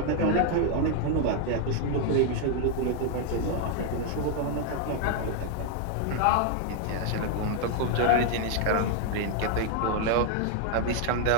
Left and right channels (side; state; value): both; different; correlation 0.00